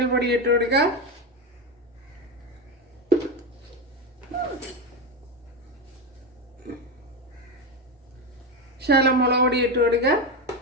ഇട്ട് കൊടുക്കുക. ശകലം മുളക് പൊടി ഇട്ട് കൊടുക്കുക.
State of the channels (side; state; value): both; normal; correlation 0.14